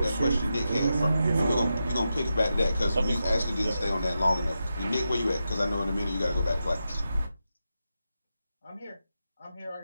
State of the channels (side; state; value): both; inverted; correlation -0.89